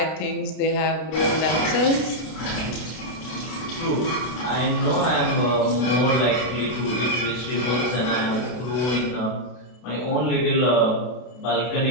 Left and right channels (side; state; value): right; late; 32 ms